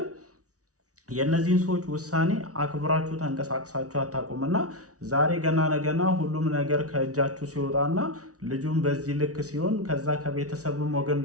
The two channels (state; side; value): late; left; 0.67 ms